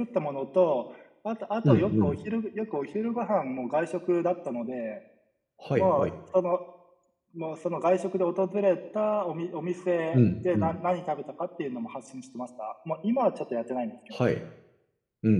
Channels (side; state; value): both; identical; correlation 1.00